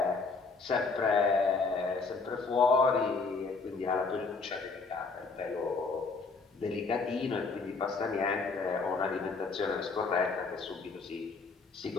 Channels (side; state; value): right; quieter; 4.3 dB